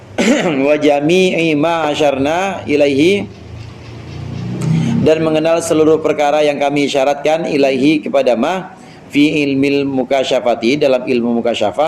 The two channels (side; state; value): both; identical; correlation 1.00